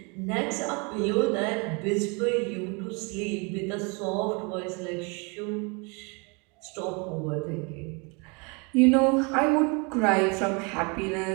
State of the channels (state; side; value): quieter; left; 31.5 dB